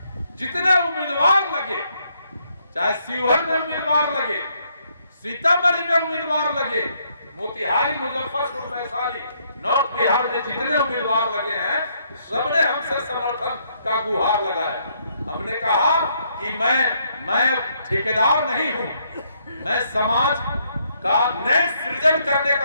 जितने उम्मीदवार लगे, चाहे शिवहर में उम्मीदवार लगे, सीतामढ़ी में उम्मीदवार लगे, मोतिहारी, मुजफ्फरपुर, वैशाली, नॉर्थ बिहार में जितने उम्मीदवार लगे हैं, सबने हमसे समर्थन का गुहार लगाया। हमने कहा कि मैं ठेकेदार नहीं हूं, मैं समाज का नए सृजन करने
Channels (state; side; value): inverted; both; correlation -0.72